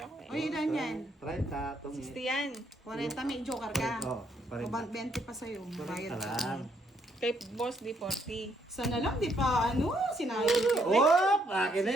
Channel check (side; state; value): both; normal; correlation 0.71